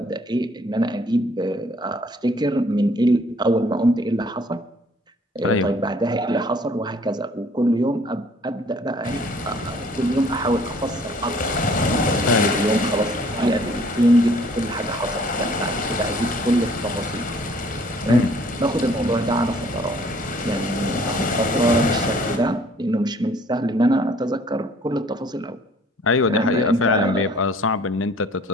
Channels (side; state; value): both; normal; correlation 0.57